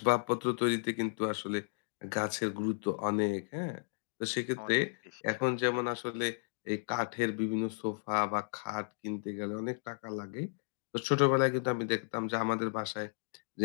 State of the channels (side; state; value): right; silent; digital silence